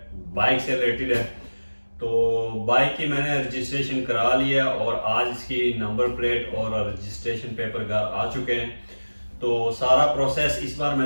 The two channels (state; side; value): inverted; both; correlation -1.00